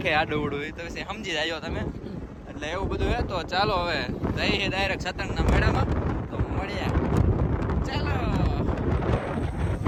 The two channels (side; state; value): both; identical; correlation 1.00